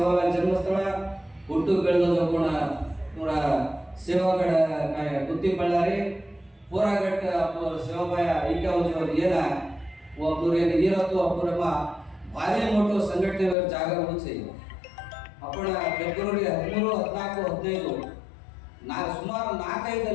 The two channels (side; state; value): right; drops out; at 13.6 s